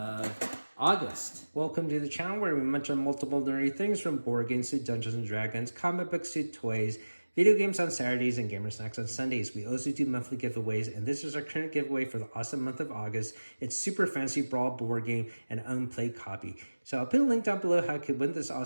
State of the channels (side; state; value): both; inverted; correlation -1.00